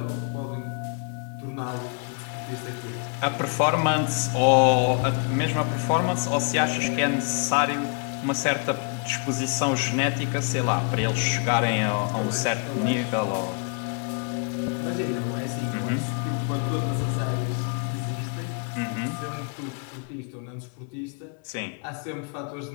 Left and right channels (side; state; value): right; quieter; 35.6 dB